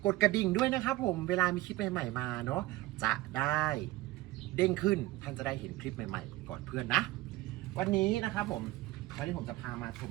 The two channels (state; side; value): quieter; left; 17.9 dB